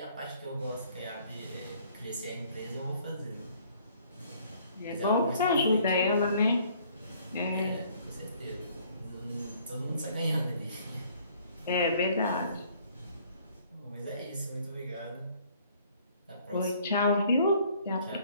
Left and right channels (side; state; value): both; inverted; correlation -0.60